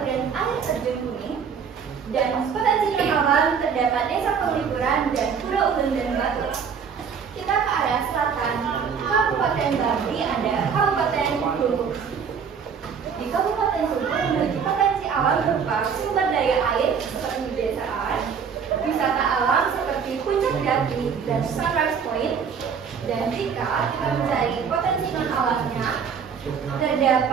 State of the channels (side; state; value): left; quieter; 6.6 dB